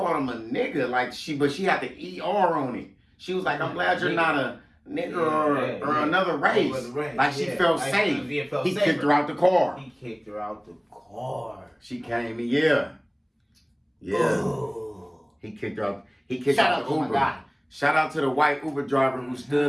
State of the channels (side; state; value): both; identical; correlation 1.00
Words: him a nigga. Like but she had the ER on it. She was like, "I'm glad you're not a nigga or another race." Like she felt safe. He kicked her out the car. He kicked her out the car. She came in, yeah. Ooh. He kicked her out. He kicked out the Uber. Shout out to the white Uber driver who